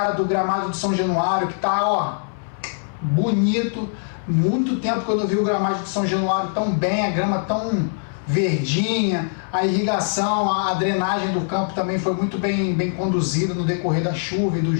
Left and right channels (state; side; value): silent; right; 64 dB below the other